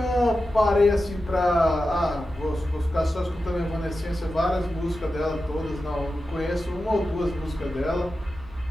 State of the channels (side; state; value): right; noise; hum, 20 dB below the sound